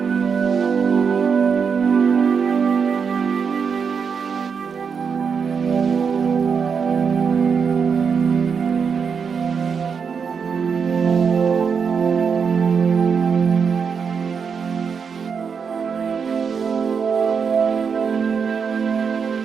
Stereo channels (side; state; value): left; quieter; 6.2 dB